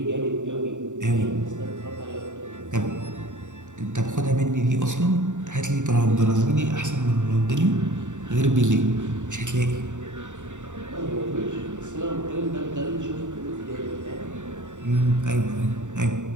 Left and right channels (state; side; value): late; left; 0.85 ms